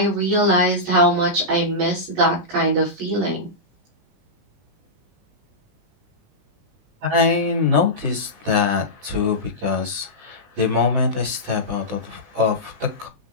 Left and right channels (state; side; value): late; left; 20 ms